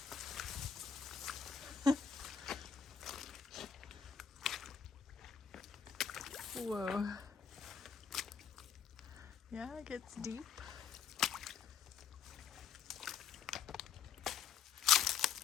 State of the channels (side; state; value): right; quieter; 7.3 dB